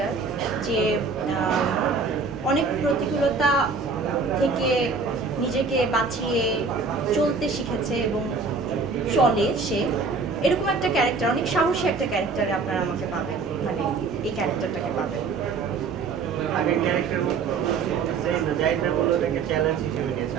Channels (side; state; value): left; quieter; 4.6 dB